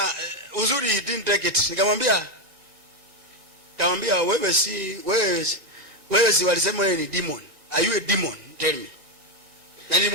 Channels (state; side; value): late; left; 1.8 ms